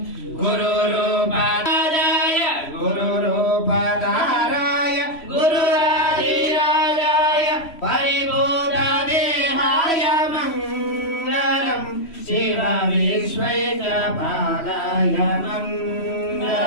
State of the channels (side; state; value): right; late; 3.1 ms